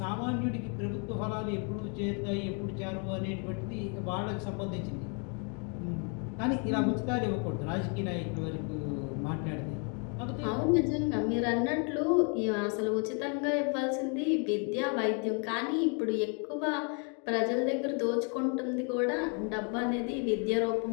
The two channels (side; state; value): right; quieter; 37.8 dB